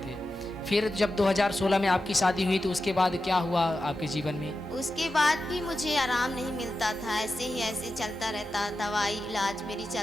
थे। फिर जब 2016 में आपकी शादी हुई तो उसके बाद क्या हुआ आपके जीवन में? उसके बाद भी मुझे आराम नहीं मिलता था, ऐसे ही ऐसे चलता रहता, दवाई इलाज मेरी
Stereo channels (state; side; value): normal; both; correlation 0.91